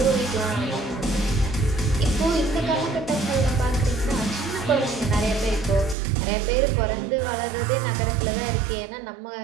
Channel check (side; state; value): left; drops out; at 6.0 s